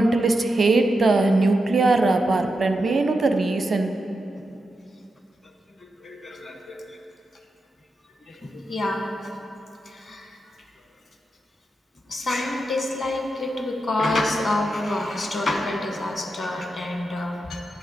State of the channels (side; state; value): both; normal; correlation 0.87